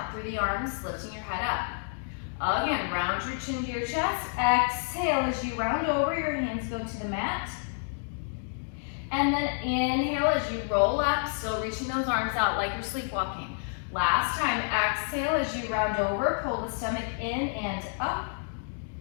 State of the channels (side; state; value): right; silent; digital silence